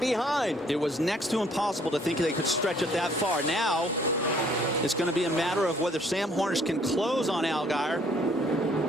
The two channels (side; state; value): both; normal; correlation 0.62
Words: It was next to impossible to think they could stretch it that far. Now it's going to be a matter of whether Sam Hornish can close on Allgaier